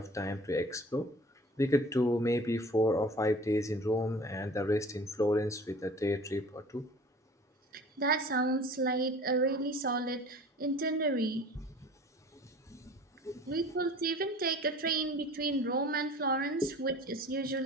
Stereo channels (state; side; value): normal; both; correlation 0.45